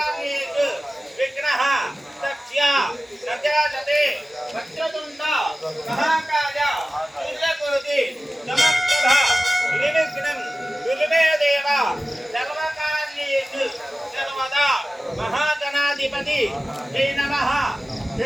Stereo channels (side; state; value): both; normal; correlation 0.96